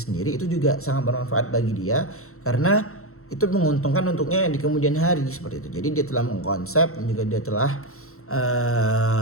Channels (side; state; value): right; late; 0.63 ms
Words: itu juga sangat bermanfaat bagi dia karena itu menguntungkan untuknya di kemudian hari seperti itu. Jadi dia telah mengkonsep dan juga dia telah